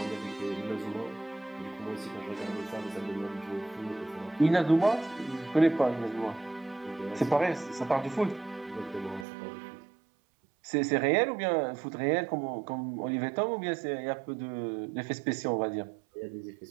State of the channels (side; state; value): left; drops out; at 9.2 s